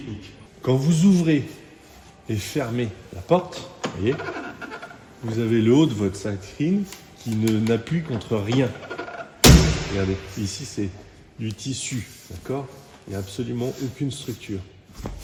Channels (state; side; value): identical; both; correlation 1.00